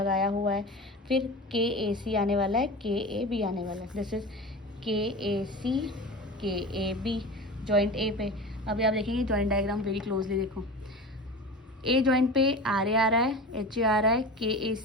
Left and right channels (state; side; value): normal; both; correlation 0.31